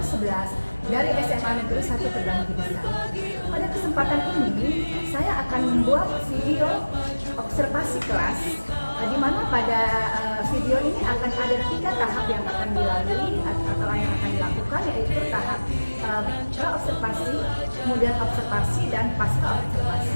11 dari SMA Negeri 1 Terbang Tinggi. Pada kesempatan ini, saya akan membuat video observasi kelas, di mana pada video ini akan ada 3 tahap yang akan dilalui atau yang akan dilakukan, yaitu tahap pra-observasi, kemudian observasi, dan pasca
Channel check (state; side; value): inverted; both; correlation -1.00